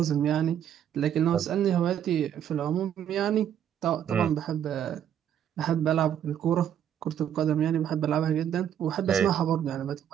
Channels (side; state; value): left; quieter; 9.7 dB